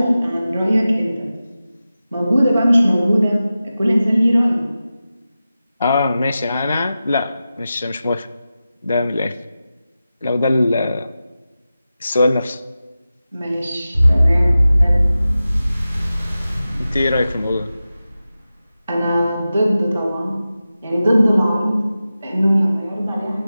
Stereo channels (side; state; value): both; inverted; correlation -0.94